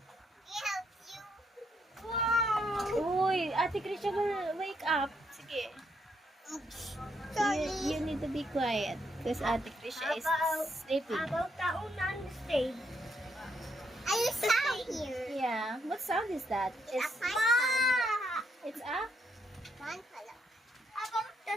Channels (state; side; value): normal; both; correlation 0.76